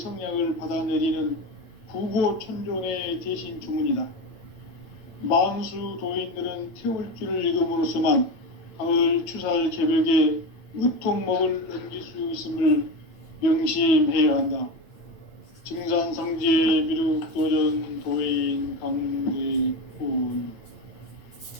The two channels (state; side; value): late; right; 8.9 ms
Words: 받아내리는 부고천존의 대신 주문이다. 만수 도인들은 태울주를 읽음으로써만 가을 추살 개벽의 의통목을 넘길 수 있음을 명심해야 한다. 증산상제 미륵도전 도인 강대군.